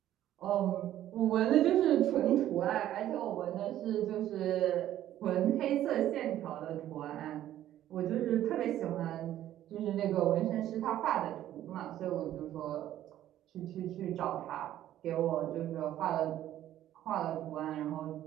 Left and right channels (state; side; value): quieter; left; 12.5 dB